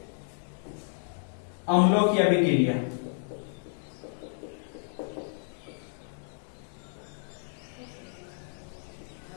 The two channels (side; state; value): right; silent; 56 dB below the other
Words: अम्लों की अभिक्रिया।